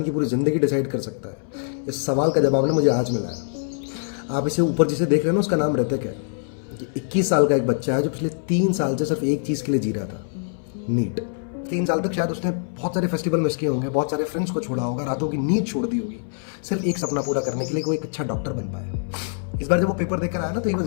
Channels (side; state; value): right; silent; 60 dB below the other